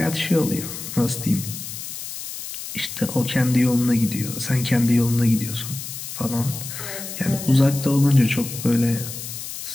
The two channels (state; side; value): noise; left; hiss, 9 dB below the sound